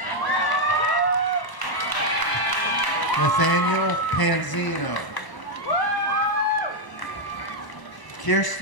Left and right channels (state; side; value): late; right; 1.0 ms